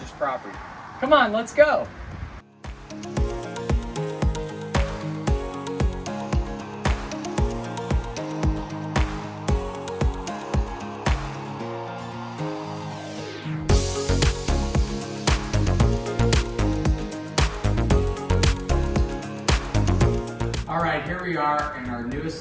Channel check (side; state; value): both; identical; correlation 1.00